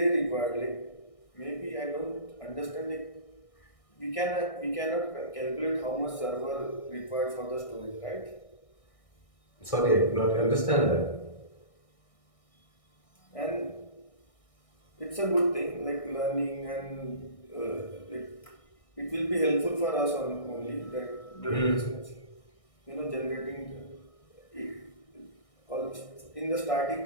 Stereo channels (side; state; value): right; late; 1.6 ms